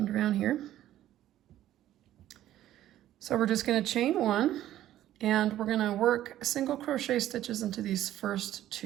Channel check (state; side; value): quieter; left; 13.0 dB